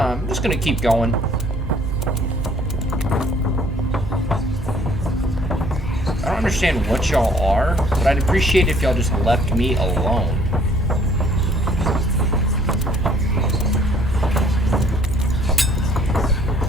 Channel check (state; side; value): normal; both; correlation 0.59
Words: just gonna keep going. I don't understand what y'all are, but I'd appreciate if y'all just left me alone.